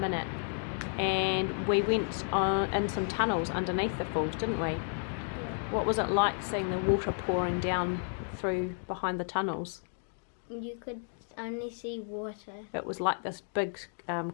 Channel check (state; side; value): silent; right; 56 dB below the other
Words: And we went in some tunnels underneath the falls, didn't we? Yeah. What was it like seeing the water pouring down through behind the tunnels? You could only see water. It was like this big